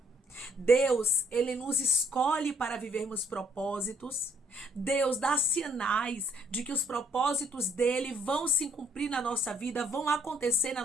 Deus, ele nos escolhe para vivermos propósitos. Deus dá sinais de que os propósitos dele vão se cumprir na nossa vida, vão acontecer na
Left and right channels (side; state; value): both; normal; correlation 0.65